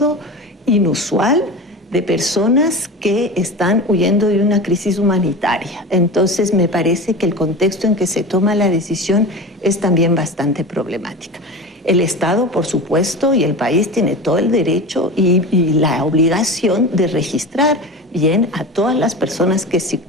inusual de personas que están huyendo de una crisis humanitaria. Entonces me parece que el contexto en que se toma la decisión es también bastante problemática. El Estado, por supuesto, y el país tiene todo el derecho y la obligación de registrar bien a todas las personas que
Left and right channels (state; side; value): normal; both; correlation 0.30